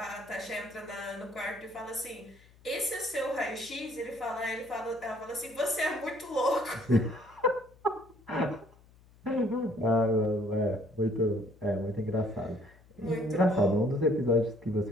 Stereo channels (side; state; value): left; noise; hum, 27 dB below the sound